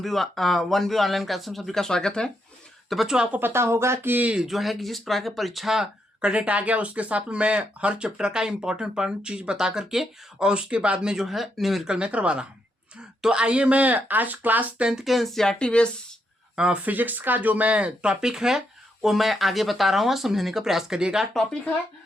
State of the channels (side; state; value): both; normal; correlation 0.79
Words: one B online class में सभी का स्वागत है। तो बच्चों, आपको पता होगा कि जो है कि जिस प्रकार की परीक्षा का डेट आ गया, उसके साथ में मैं हर चैप्टर का इंपॉर्टेंट चीज बता करके और उसके बाद में जो है न्यूमेरिकल में करवा रहा हूँ। तो आइए, मैं आज क्लास 10th के एनसीईआरटी बेस फिजिक्स का जो मैं टॉपिक है वो मैं आगे बता रहा हूँ, समझने का प्रयास करिएगा। टॉपिक है